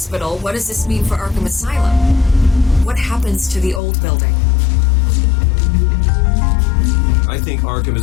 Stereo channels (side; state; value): right; drops out; at 3.8 s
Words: what does this mean for Arkham Asylum? What happens to the old building? I think Arkham